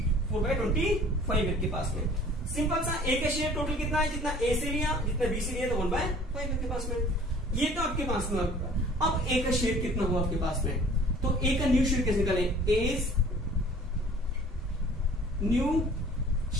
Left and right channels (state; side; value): normal; both; correlation 0.50